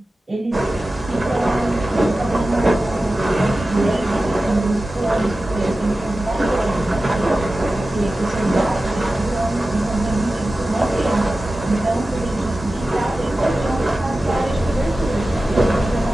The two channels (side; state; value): both; normal; correlation 0.95